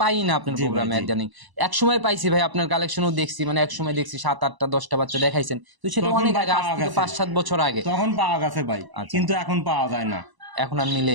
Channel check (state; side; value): late; left; 1.0 ms